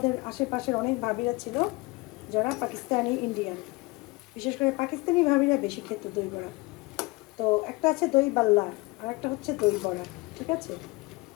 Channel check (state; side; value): quieter; right; 24.1 dB